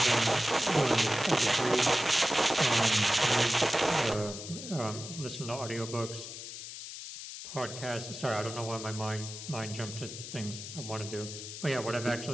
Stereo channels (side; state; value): left; noise; hiss, 10 dB below the sound